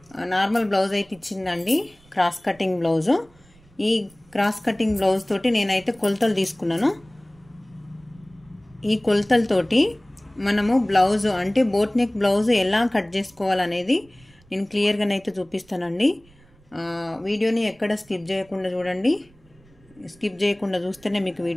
నార్మల్ బ్లౌజ్ అయితే ఇచ్చిందండి, క్రాస్ కటింగ్ బ్లౌజు. ఈ క్రాస్ కటింగ్ బ్లౌజ్ తోటి నేనైతే కొలతలు తీసుకున్నాను. ఈ కొలతలతోటి మనము బ్లౌజు అంటే బోట్ నెక్ బ్లౌజు ఎలా కట్ చేసుకోవాలనేది నేను క్లియర్గానైతే చూపిస్తానండి. వీడియోని ఎక్కడ స్కిప్ చేయకుండా చూడండి. స్కిప్ చేయకుండా చూస్తేనే మీకు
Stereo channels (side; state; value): right; noise; rumble, 29 dB below the sound